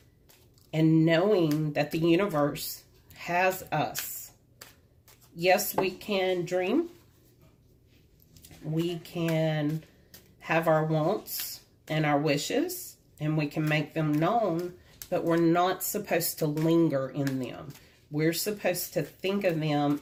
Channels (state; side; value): identical; both; correlation 1.00